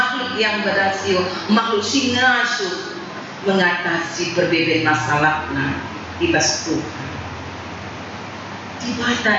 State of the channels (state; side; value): identical; both; correlation 1.00